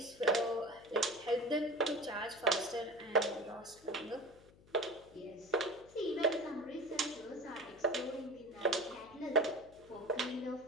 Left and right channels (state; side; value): noise; left; hum, 25 dB below the sound